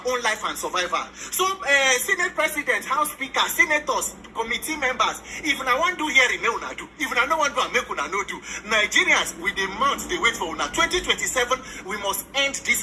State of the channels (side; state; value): both; identical; correlation 1.00